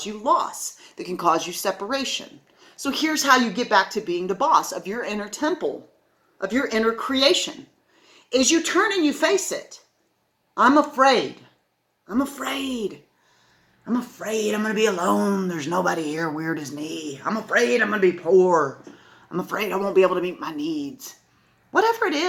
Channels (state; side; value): identical; both; correlation 1.00